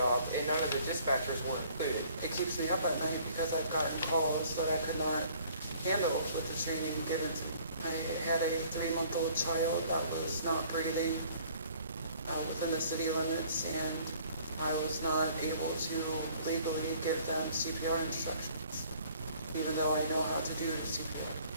and none of the dispatchers were included. It keeps me up at night because I've gotten calls that I could not handle with the training given to me. I had a 3-month-old child that was not breathing within the city limits, and I was not able to legally give them CPR instructions, even though I know how to do CPR.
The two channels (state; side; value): inverted; both; correlation -0.57